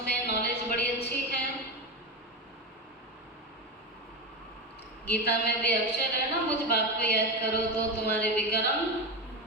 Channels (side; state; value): both; normal; correlation 0.17